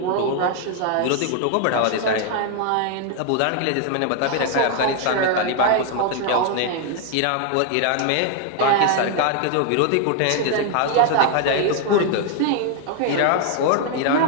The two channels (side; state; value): both; different; correlation 0.00